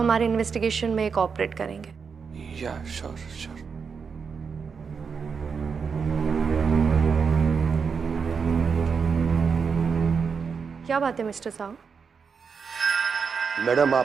इन्वेस्टिगेशन में कोऑपरेट करेंगे। या श्योर श्योर। क्या बात है मिस्टर साहू? मैडम,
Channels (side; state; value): left; quieter; 5.8 dB